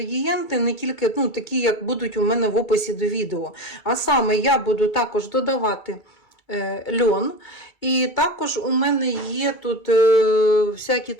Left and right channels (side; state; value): right; late; 2.3 ms